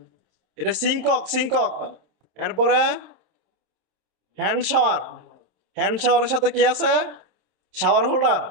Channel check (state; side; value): late; left; 27 ms